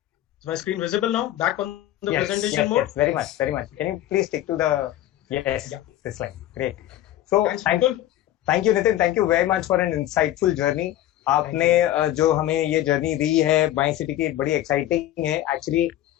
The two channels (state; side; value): quieter; right; 13.5 dB